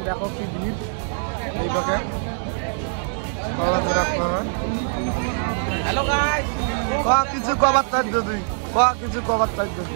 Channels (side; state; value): left; silent; 62 dB below the other